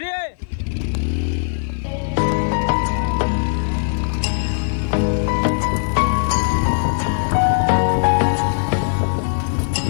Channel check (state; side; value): silent; right; 55 dB below the other